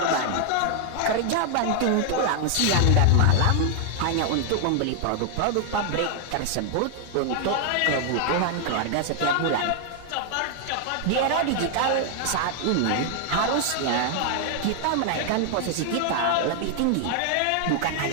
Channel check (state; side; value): different; both; correlation 0.00